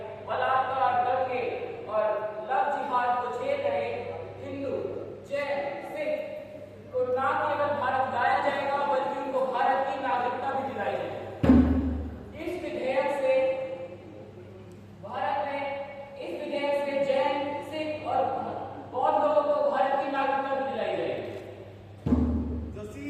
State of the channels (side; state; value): both; identical; correlation 1.00